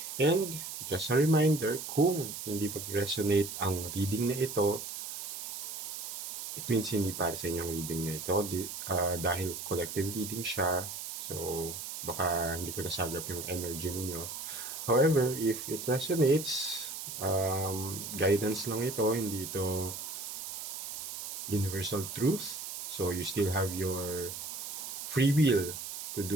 And just a reminder, kung hindi mag-resonate ang reading na ito, it means hindi para sa inyong reading na ito dahil collective reading siya. So, baka hindi ko nasagap yung energy ninyo. However, if it resonates, guidance lang ito, hindi ito universal truth. So, you still have your free will to do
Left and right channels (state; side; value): noise; right; hiss, 7 dB below the sound